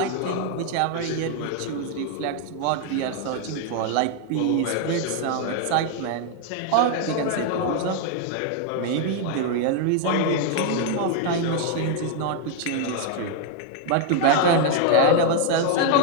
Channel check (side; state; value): both; different; correlation 0.00